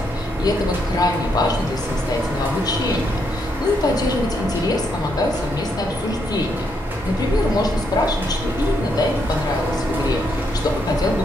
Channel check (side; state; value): both; normal; correlation 0.76